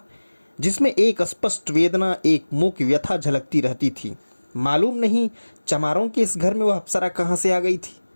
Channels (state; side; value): inverted; both; correlation -1.00